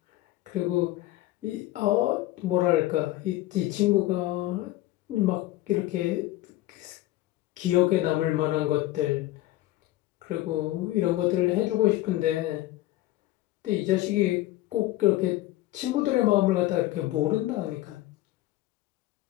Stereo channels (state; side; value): quieter; right; 16.4 dB